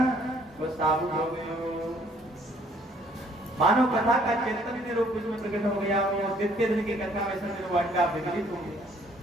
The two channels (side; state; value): both; normal; correlation 0.62